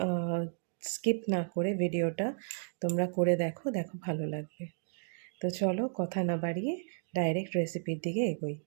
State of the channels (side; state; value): left; silent; digital silence